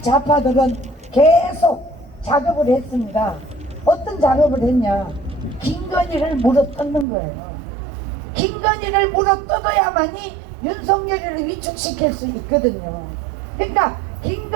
좌파들은 계속 작업을 했습니다. 어떤 작업을 했냐? 김건희를 물어뜯는 거예요. 김건희를 물어뜯어야만이 윤석열을 위축시킬 수 있거든요. 그러니까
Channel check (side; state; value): left; drops out; at 7.1 s